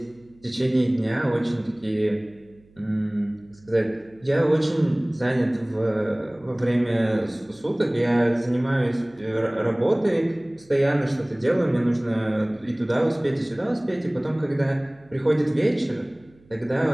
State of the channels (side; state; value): right; noise; hum, 29 dB below the sound